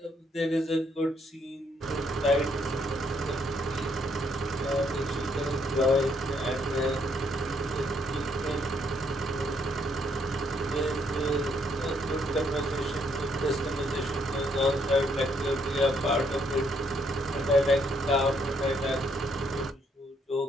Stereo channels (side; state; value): both; normal; correlation 0.71